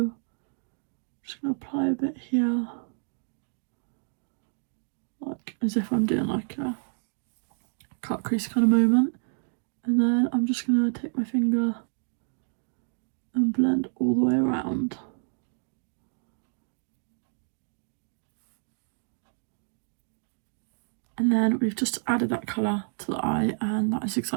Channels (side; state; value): left; silent; 59 dB below the other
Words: just going to apply a bit here, like as if I'm doing like a cut crease kind of moment. And then I'm just going to take my finger and blend all the way around. And then we've just added that colour to the eye, and that is